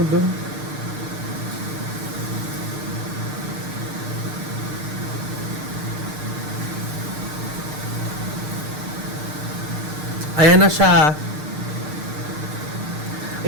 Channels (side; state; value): left; late; 6.6 ms